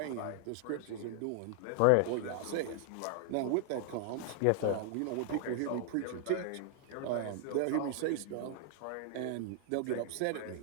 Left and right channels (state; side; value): different; both; correlation 0.00